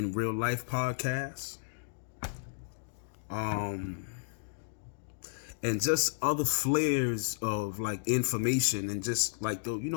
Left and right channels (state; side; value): silent; right; digital silence